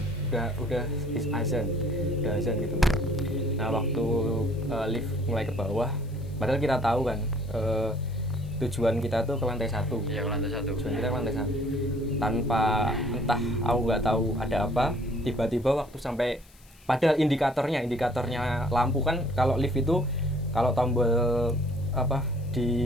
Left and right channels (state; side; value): noise; left; hiss, 28 dB below the sound